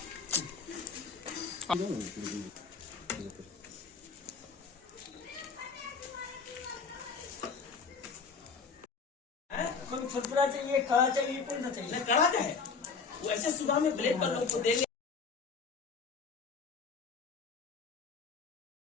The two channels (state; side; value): quieter; right; 5.2 dB